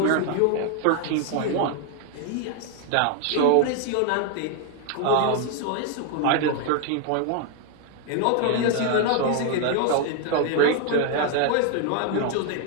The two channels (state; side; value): different; both; correlation 0.00